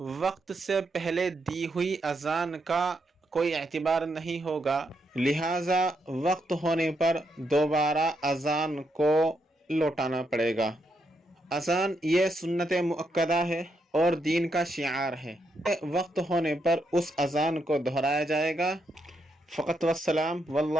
وقت سے پہلے دی ہوئی اذان کا کوئی اعتبار نہیں ہوگا، لہٰذا وقت ہونے پر دوبارہ اذان کو لوٹانا پڑے گا۔ اذان یہ سنت مؤکدہ ہے اور دین کا شعار ہے۔ وقت ہونے پر اس اذان کو دہرایا جائے گا۔ فقط والسلام،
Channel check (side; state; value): both; normal; correlation 0.80